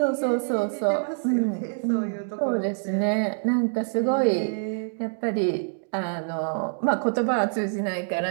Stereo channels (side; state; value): left; silent; digital silence